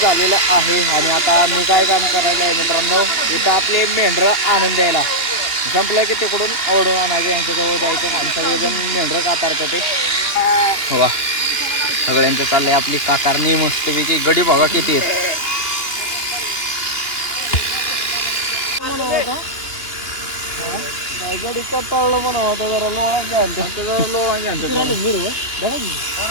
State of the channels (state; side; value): late; right; 2.9 ms